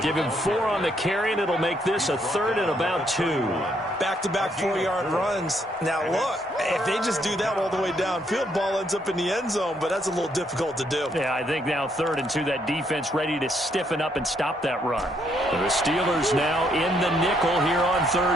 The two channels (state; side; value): normal; both; correlation 0.72